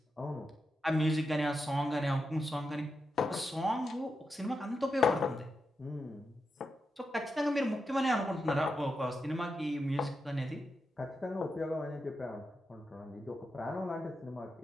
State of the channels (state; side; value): normal; both; correlation 0.87